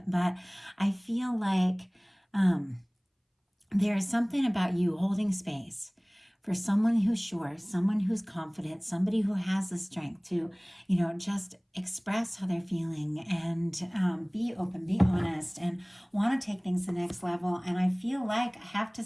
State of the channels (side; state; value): both; identical; correlation 1.00